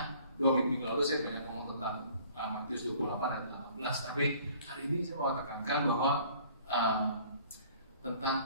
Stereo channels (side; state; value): both; inverted; correlation -0.54